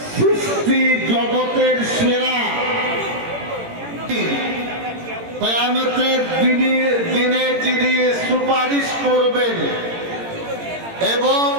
সৃষ্টি জগতের সেরা কিয়ামতের দিনে যিনি সুপারিশ করবেন এবং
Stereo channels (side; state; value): left; late; 18 ms